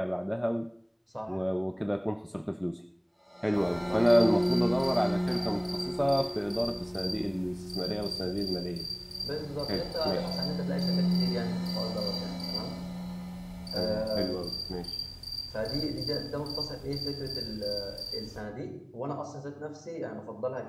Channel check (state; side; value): identical; both; correlation 1.00